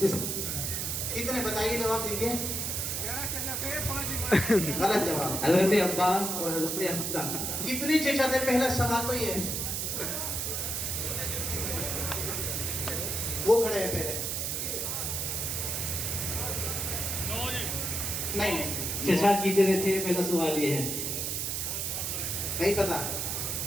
کتنے بتائیے، جواب دیجیے. غلط جواب. حضرت عباس اور حضرت حمزہ. کتنے چچا تھے؟ پہلا سوال تو یہ ہے. وہ کھڑے ہیں پہلے. نہیں چچا کتنے تھے؟ پہلا سوال یہ ہے. نہیں پتا.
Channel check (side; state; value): right; noise; hiss, 1 dB below the sound